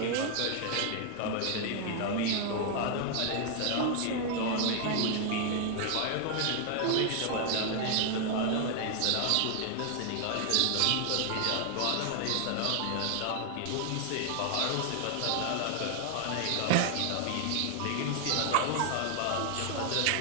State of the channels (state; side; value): different; both; correlation 0.00